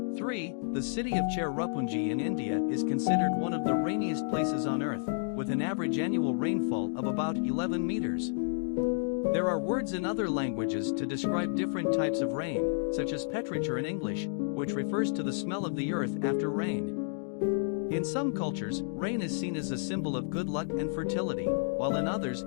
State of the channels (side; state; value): right; silent; digital silence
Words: 3. The city of Cherrapunji in India is considered one of the rainiest places on Earth, with an average annual rainfall of about 11 meters. There are words in other languages to describe different types of rain, such as petrichor in English, which refers to the smell of the earth after rain. In some cultures, rain is seen as a symbol of good luck and fertility, while in others